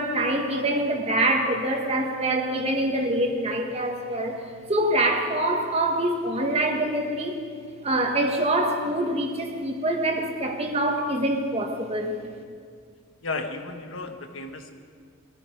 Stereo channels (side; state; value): both; normal; correlation 0.07